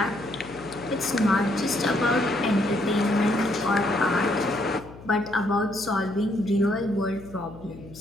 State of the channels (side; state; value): left; noise; hum, 18 dB below the sound